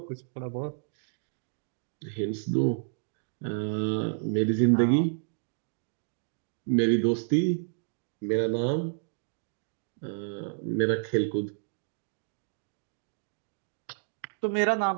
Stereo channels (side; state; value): left; silent; digital silence